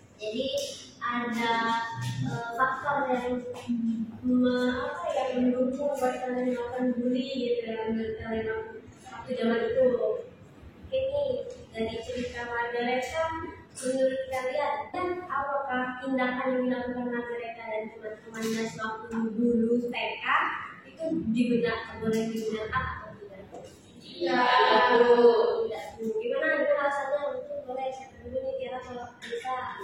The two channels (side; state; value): both; identical; correlation 1.00